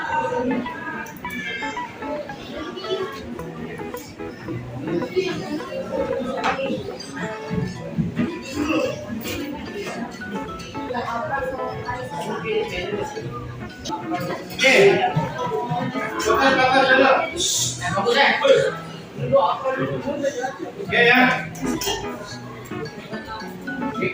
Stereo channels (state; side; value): identical; both; correlation 1.00